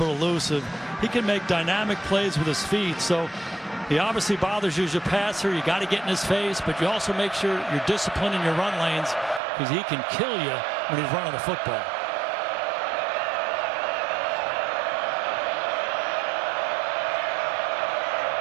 elusive. He can make dynamic plays with his feet. So he obviously bothers you as a passer. You got to get in his face, but you also make sure you're disciplined in your run lanes because he can kill you when he's running the football.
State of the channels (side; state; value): left; drops out; at 9.4 s